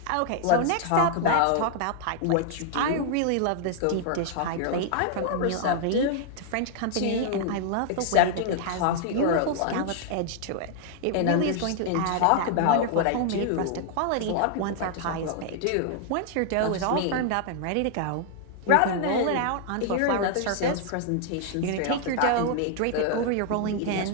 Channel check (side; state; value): both; different; correlation 0.00